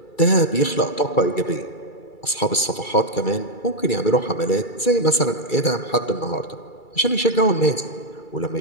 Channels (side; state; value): right; late; 2.3 ms